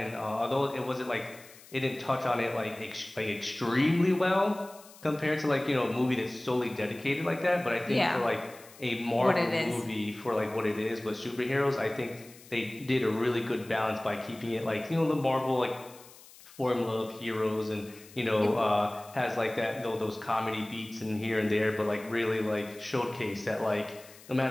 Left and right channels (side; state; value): left; noise; hiss, 21 dB below the sound